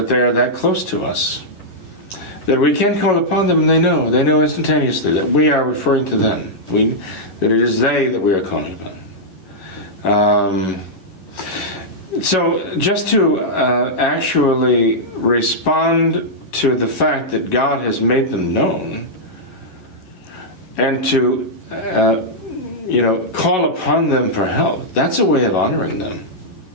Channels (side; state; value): right; late; 11 ms